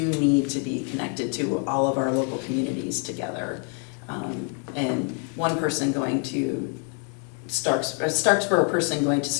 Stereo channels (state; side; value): quieter; right; 39.1 dB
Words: need to be connected to all of our local communities together. And one person going to a Starksboro person going to